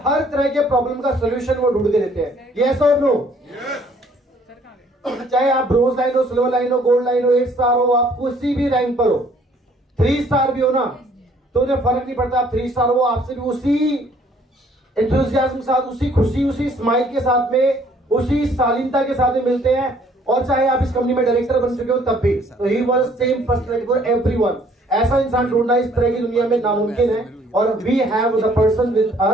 हर तरह के प्रॉब्लम का सोल्यूशन वो ढूंढ के देते हैं। यस और नो? चाहे आप ब्रोंज लाइन हो, सिल्वर लाइन हो, गोल्ड लाइन हो, 8 स्टार हो, आप किसी भी रैंक पर हो, 3 स्टार भी हो ना, तो उन्हें फर्क नहीं पड़ता। आप 3 स्टार हो, आपसे भी उसी एंथुसियाज्म के साथ, उसी खुशी, उसी स्माइल के साथ में, उसी शालीनता के साथ में मिलते हैं। और चाहे आप इस कंपनी में डायरेक्टर बन चुके हो तब भी, तो he was same personality for everyone. ऐसा इंसान ढूंढना इस तरह की दुनिया में नामुमकिन है और we have the person with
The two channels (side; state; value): both; normal; correlation 0.61